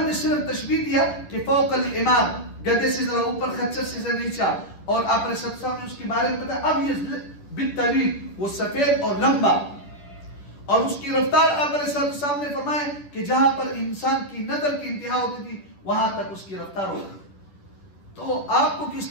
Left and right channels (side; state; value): right; late; 10 ms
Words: نے صرف تشبیہ دیا کہ فوق الحمار، گدھے سے ذرا اوپر، خچر سے ذرا نیچا، اور آپ علیہ السلام نے اس کے بارے میں بتایا اب یہ بالطویل، وہ سفید اور لمبا، اور اس کی رفتار آپ علیہ السلام نے فرمایا کہ جہاں پر انسان کی نظر کی انتہا ہوتی تھی وہاں تک اس کی رفتار ہوتی تھی۔ تو آپ کو